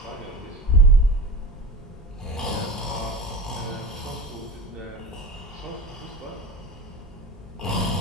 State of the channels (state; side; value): normal; both; correlation 0.32